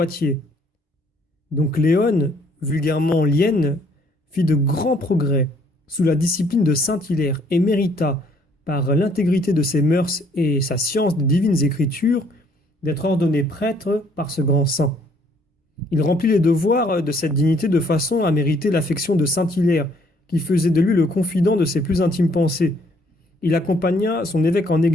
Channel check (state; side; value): normal; both; correlation 0.64